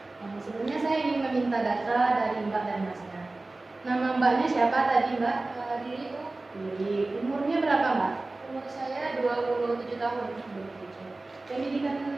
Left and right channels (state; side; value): quieter; left; 3.1 dB